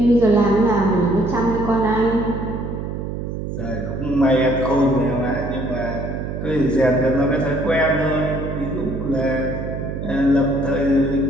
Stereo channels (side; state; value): right; noise; hum, 5 dB below the sound